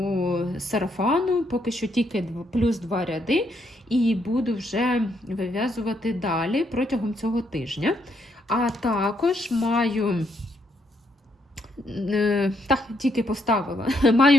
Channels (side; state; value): both; normal; correlation 0.75